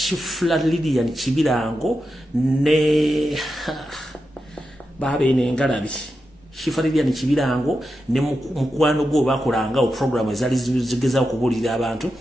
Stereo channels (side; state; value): both; normal; correlation 0.89